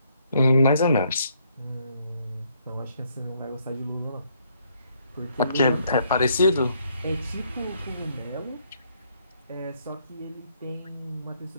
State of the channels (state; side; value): inverted; both; correlation -0.70